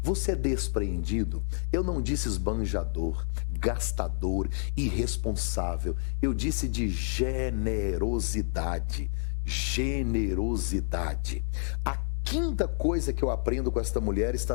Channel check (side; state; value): right; silent; digital silence